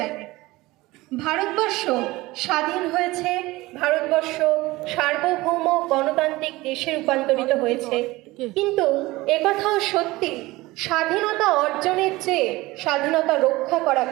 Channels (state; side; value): quieter; left; 19.9 dB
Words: ভারতবর্ষ স্বাধীন হয়েছে, ভারতবর্ষ সার্বভৌম গণতান্ত্রিক দেশে রূপান্তরিত হয়েছে, কিন্তু একথাও সত্যি, স্বাধীনতা অর্জনের চেয়ে স্বাধীনতা রক্ষা করা